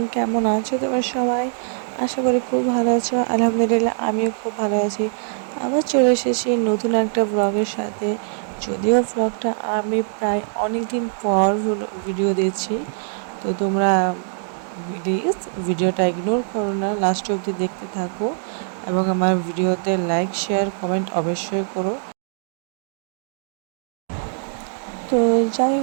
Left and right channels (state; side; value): silent; left; digital silence